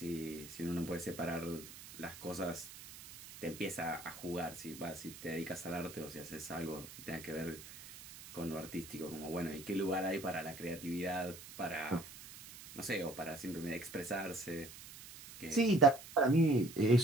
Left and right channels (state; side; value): noise; right; hiss, 15 dB below the sound